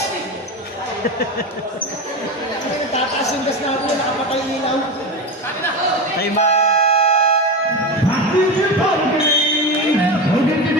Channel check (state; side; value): normal; both; correlation 0.21